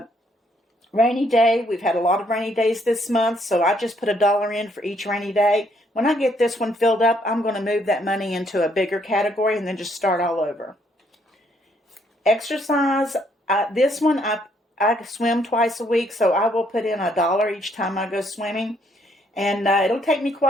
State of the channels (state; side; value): normal; both; correlation 0.69